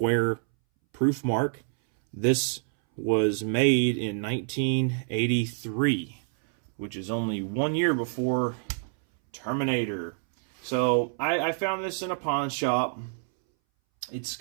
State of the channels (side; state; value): left; silent; 60 dB below the other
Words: proof mark. This was made in 1983, which is only 1 year before Terminator. So I found this in a pawn shop. It's